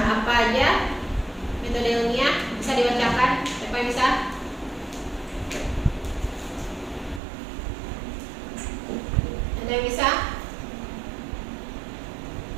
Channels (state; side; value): drops out; left; at 7.2 s